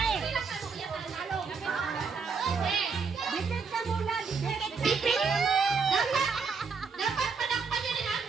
eh. Dikit ka muna, dikit. Ipit! Dapat panakpan nyo rin ang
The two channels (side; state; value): left; quieter; 5.2 dB